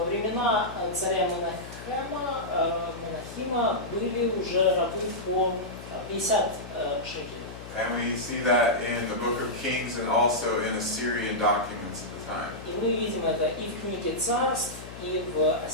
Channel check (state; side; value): noise; left; hum, 13 dB below the sound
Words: времена царя Менахима были уже рабы по 50 шекелей. And we see that in the book of Kings and also in Assyrian documents at the time. И мы видим это и в книге Царств, и в